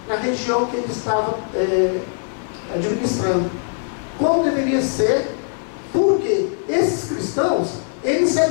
na região que ele estava administrando. Como deveria ser, porque esses cristãos, ele se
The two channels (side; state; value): right; silent; digital silence